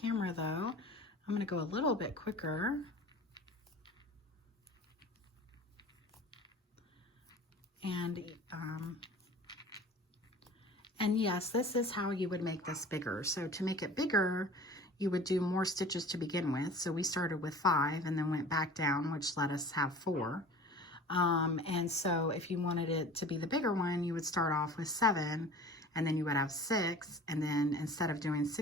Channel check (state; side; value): normal; both; correlation 0.42